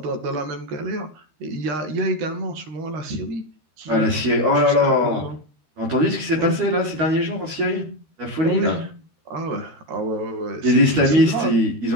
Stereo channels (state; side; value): late; left; 13 ms